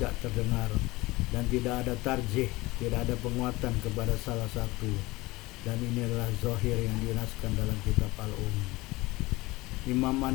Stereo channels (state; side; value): quieter; right; 21.0 dB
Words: terdengar, dan tidak ada tarjih, tidak ada penguatan kepada salah satu, dan ini adalah zahir yang dinaskan dalam kitab Imam